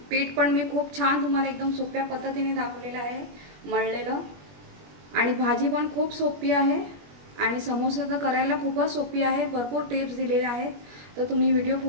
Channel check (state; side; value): late; left; 21 ms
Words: पीठ पण मी खूप छान तुम्हाला एकदम सोप्या पद्धतीने दाखवलेलं आहे मळलेलं, आणि भाजी पण खूप सोपी आहे आणि समोसा तर करायला खूपच सोपी आहे। भरपूर टिप्स दिलेल्या आहेत, तर तुम्ही व्हिडिओ